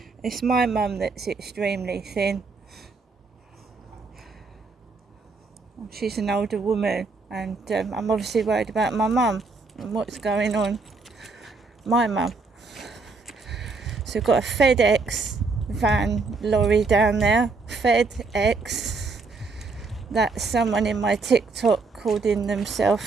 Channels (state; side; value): quieter; left; 4.0 dB